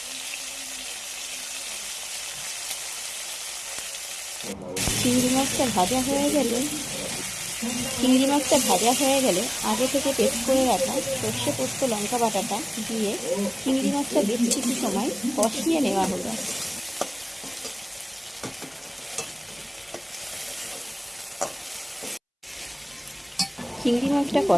চিংড়ি মাছটা ভাজা হয়ে গেলে আগে থেকে পেস্ট করে রাখা সর্ষে পোস্ত লঙ্কা বাটাটা দিয়ে চিংড়ি মাছটা বেশ কিছু সময় কষিয়ে নেওয়া হলো। চিংড়ি মাছটা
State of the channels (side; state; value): both; identical; correlation 1.00